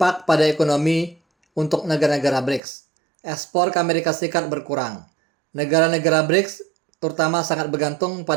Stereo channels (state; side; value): drops out; left; at 2.6 s